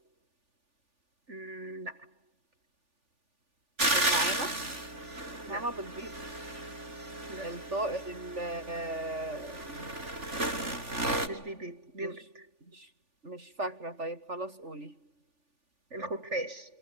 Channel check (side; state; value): left; late; 3.4 ms